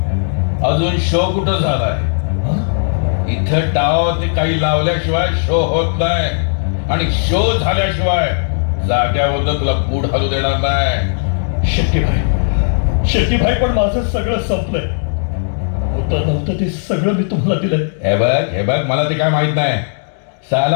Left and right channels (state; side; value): silent; right; digital silence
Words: अजून शो कुठं झालाय? इथं डाव ते काही लावल्याशिवाय शो होत नाही. आणि शो झाल्याशिवाय जाग्यावर तुला बूट हलू देणार नाही. शेट्टीभाई पण माझं सगळं संपलंय. होतं नव्हतं ते सगळं मी तुम्हाला दिलंय. हे बघ मला ते काय माहित नाही.